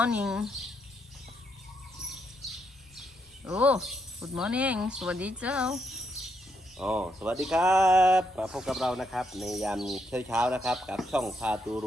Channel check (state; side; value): normal; both; correlation 0.77